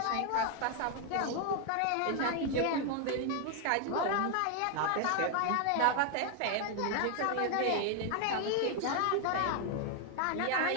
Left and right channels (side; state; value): both; different; correlation 0.00